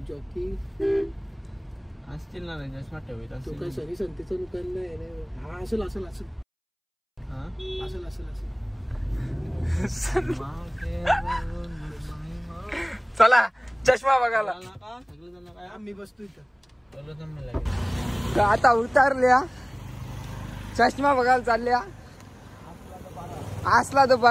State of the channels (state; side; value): identical; both; correlation 1.00